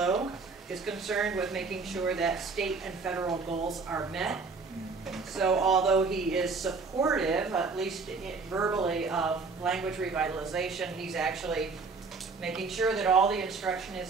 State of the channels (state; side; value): quieter; left; 4.5 dB